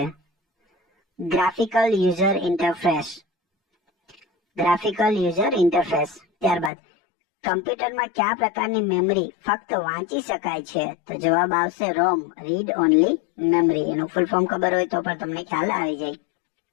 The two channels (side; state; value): right; drops out; at 6.7 s